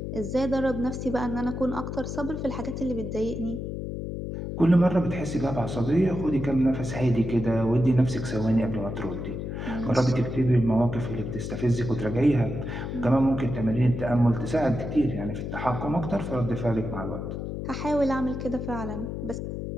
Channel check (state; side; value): noise; left; hum, 5 dB below the sound